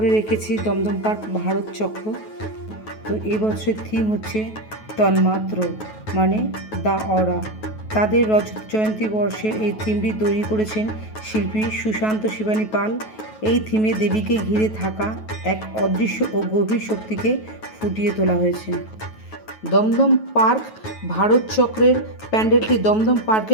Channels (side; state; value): right; late; 9.3 ms